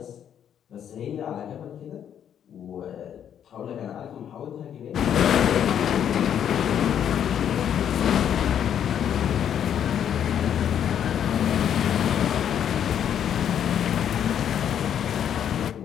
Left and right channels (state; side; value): quieter; right; 9.3 dB